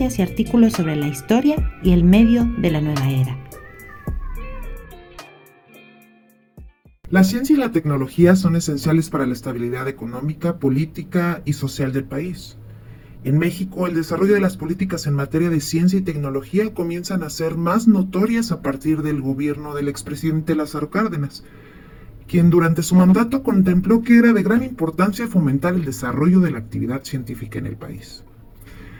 y artículos sobre la historia y el medio de la nueva era. La ciencia y la tecnología son esenciales para la estabilidad económica, política y social del país. En México, el desarrollo de las políticas en materia de ciencia y tecnología comienzan a ser más notorias a partir del gobierno del expresidente Lázaro Cárdenas, quien durante su mandato contempló que era de gran importancia fomentar el desarrollo de la actividad científica en el país.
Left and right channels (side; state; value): both; identical; correlation 1.00